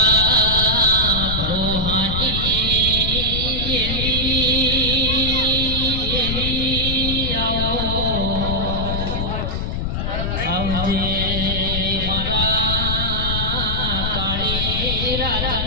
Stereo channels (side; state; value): left; noise; rumble, 2 dB below the sound